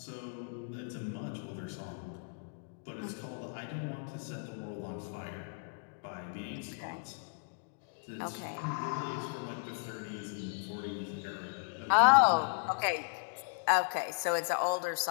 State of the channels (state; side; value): silent; right; digital silence